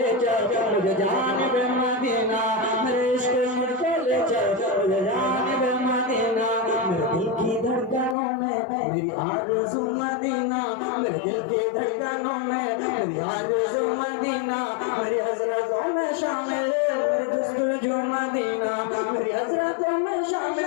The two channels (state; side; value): drops out; right; at 8.2 s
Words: चल मुझे जानिबे मदीना, मेरे इश्क मुझको ले चल मुझे जानिबे मदीना। मेरे दिल की धड़कनों में मेरी आरज़ू मदीना, मेरे दिल की धड़कनों में मेरी आरज़ू मदीना। मेरी हज़रतों में शामिल मेरी जस्तुजू मदीना, मेरी हज़रतों में